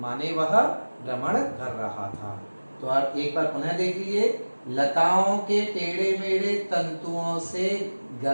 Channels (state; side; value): inverted; both; correlation -1.00